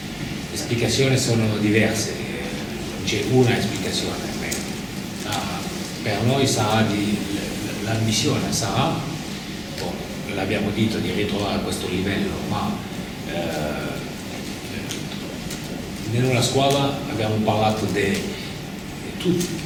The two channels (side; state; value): both; identical; correlation 1.00